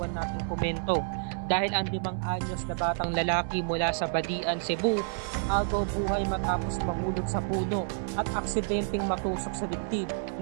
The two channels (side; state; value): left; silent; 58 dB below the other